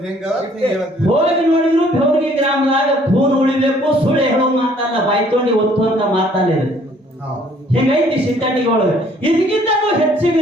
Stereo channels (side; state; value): both; normal; correlation 0.60